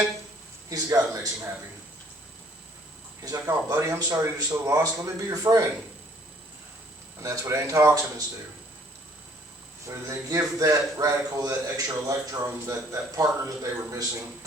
he's the guy that makes him happy. He's like, oh buddy, I'm sorry you're so lost. Let me be your friend. And that's what antioxidants do. They give that radical, that extra electron, that partner that they were missing.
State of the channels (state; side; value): normal; both; correlation 0.60